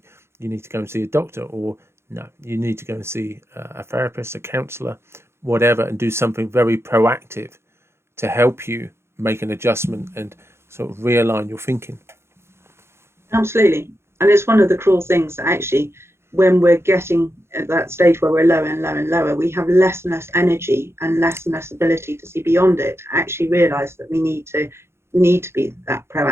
you need to go and see a doctor, or no, you need to go and see a therapist, a counselor, whatever, and do something very proactive to help you make an adjustment and sort of realign your thinking. Absolutely. And it's one of the cruel things that actually, when we're getting at that stage where we're lower and lower and lower, we have less and less energy and less ability to see beyond it, to actually realize that we need to be that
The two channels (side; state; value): left; late; 0.12 ms